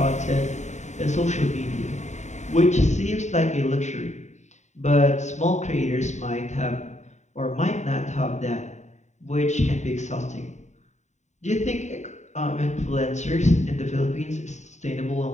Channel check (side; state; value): right; late; 0.34 ms